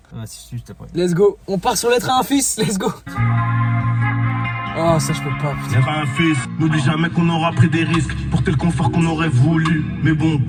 Ah, si, juste après. Let's go. On part sur l'être un fils, let's go. Oh, ça, je peux pas, putain. L'être un fils, nous dis jamais qu'on aura pris des risques. Porter le confort qu'on aurait voulu. Mais bon,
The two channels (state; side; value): identical; both; correlation 1.00